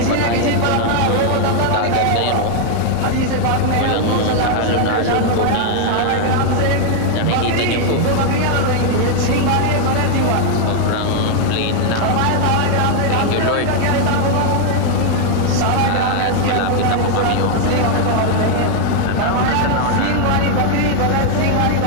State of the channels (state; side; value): different; both; correlation 0.00